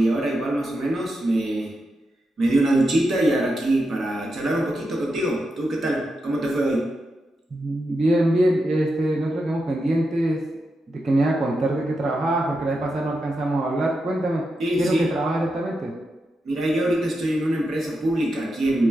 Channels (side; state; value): both; normal; correlation 0.87